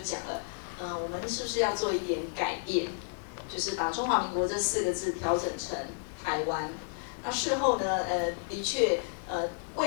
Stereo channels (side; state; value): right; silent; digital silence